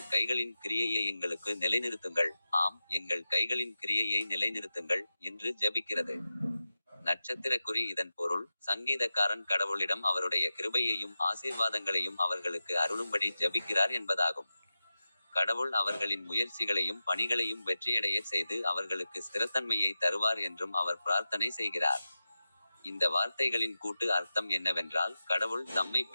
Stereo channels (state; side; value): inverted; both; correlation -0.93